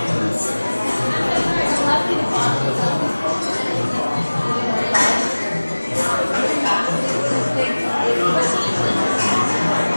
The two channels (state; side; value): inverted; both; correlation -1.00